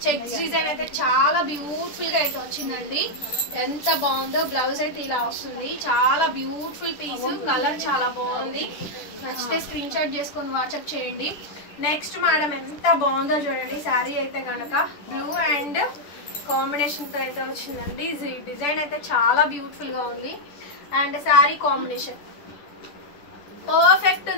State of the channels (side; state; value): right; late; 10 ms